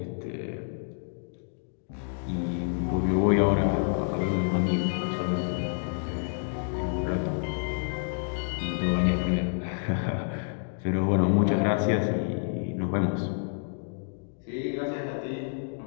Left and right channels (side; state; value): right; silent; digital silence